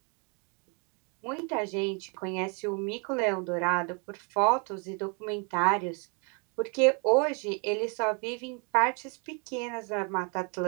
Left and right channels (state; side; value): quieter; left; 35.4 dB